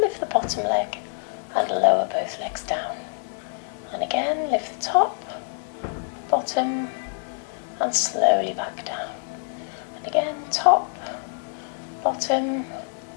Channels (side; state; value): right; silent; digital silence